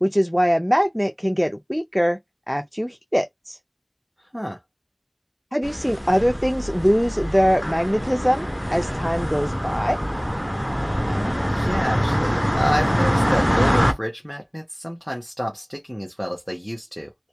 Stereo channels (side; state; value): both; identical; correlation 1.00